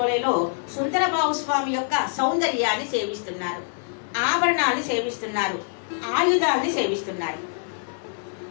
సుందరబాబు స్వామి యొక్క సౌందర్యాన్ని సేవిస్తున్నారు. ఆభరణాన్ని సేవిస్తున్నారు. ఆయుధాన్ని సేవిస్తున్నారు.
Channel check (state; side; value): silent; right; 62 dB below the other